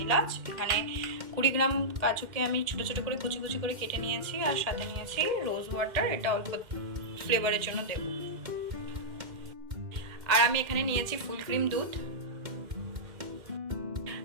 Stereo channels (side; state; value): left; late; 2.1 ms